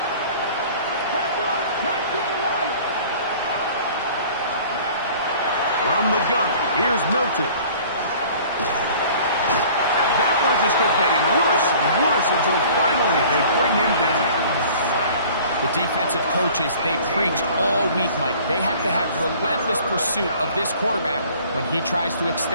From the gun, here's Milton. Just kept getting worse and worse until finally they bring him down. The defensive coaches, they preached all week, Mike. They have to have relentless pursuit of this quarterback when he tries to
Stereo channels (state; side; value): inverted; both; correlation -0.49